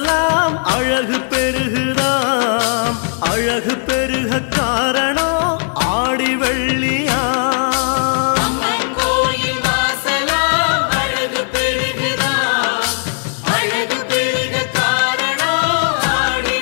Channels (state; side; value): silent; right; 61 dB below the other